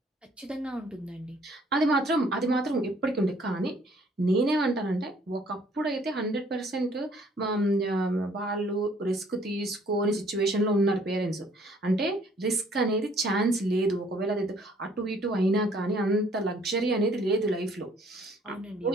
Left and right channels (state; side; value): normal; both; correlation 0.61